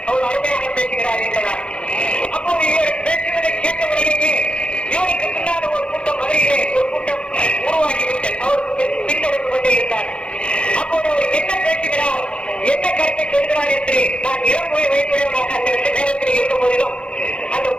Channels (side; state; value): right; late; 0.057 ms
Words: அவர் அருமையாக பேசுகிறார் என்றார். அப்போது இவர் பேசுவதை கேட்டவர்களுக்கு இவருக்கு பின்னால் ஒரு கூட்டம் மதுரையிலே ஒரு கூட்டம் உருவாகிவிட்டது. அவருக்கு பின்தொடர்ந்து கொண்டே இருந்தார். அப்போது அவர் என்ன பேசுகிறார், என்ன கருத்தை சொல்கிறார் என்று நான் இளமுறை வைத்துள்ளவனாக அந்த நேரத்தில் இருந்த போதிலும் அந்த